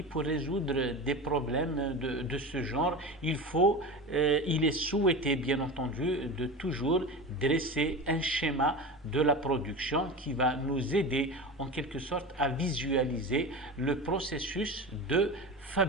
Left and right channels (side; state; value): both; normal; correlation 0.27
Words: pour résoudre des problèmes de ce genre? Il est souhaité, bien entendu, de toujours dresser un schéma de la production qui va nous aider en quelque sorte à visualiser le processus de